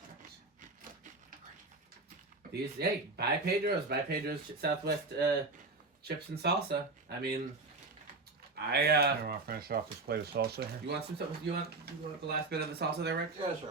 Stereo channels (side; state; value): left; quieter; 3.5 dB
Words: These buy Pedro's Southwest chips and salsa. I mean, I want to finish off this plate of salsa here. you want some? You want the last bit of the salsa there, Rick? Yeah,